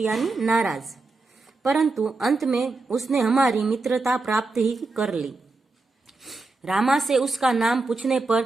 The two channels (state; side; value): quieter; left; 3.5 dB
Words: नाराज, परंतु अंत में उसने हमारी मित्रता प्राप्त ही कर ली। रामा से उसका नाम पूछने